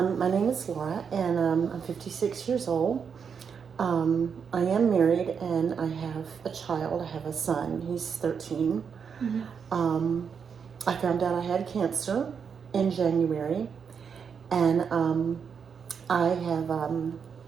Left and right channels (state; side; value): quieter; left; 6.6 dB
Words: name is Laura, and I'm 56 years old. I am married, and I have a child. I have a son. He's 13. Mm-hmm. I found out I had cancer in January, and I have